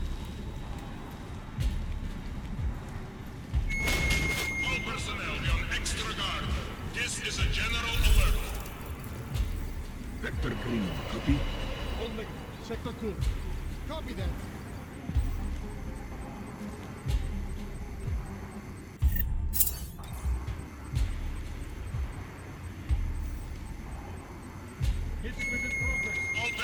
All personnel be on extra guard. This is a general alert. Vector green. Copy. Sector 2. Copy that. All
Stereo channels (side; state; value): both; identical; correlation 1.00